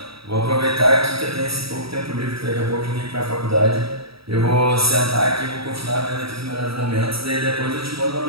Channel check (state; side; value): late; left; 0.76 ms